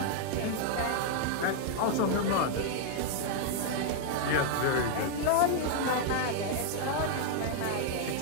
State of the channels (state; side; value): different; both; correlation -0.01